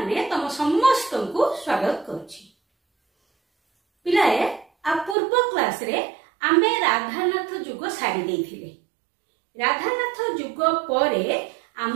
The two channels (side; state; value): left; drops out; at 5.2 s